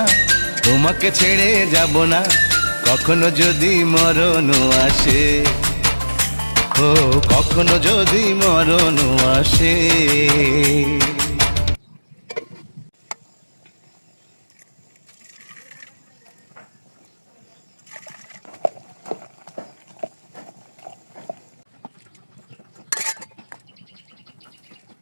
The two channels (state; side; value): inverted; both; correlation -1.00